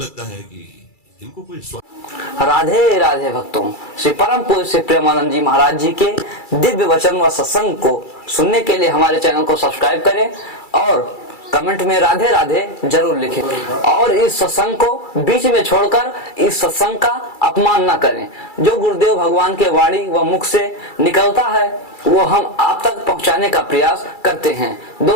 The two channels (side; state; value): right; late; 2.3 ms